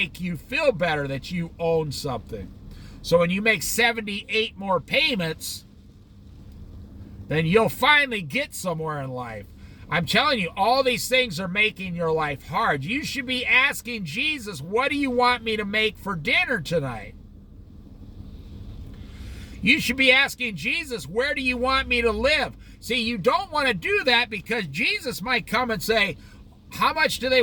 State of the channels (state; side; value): identical; both; correlation 1.00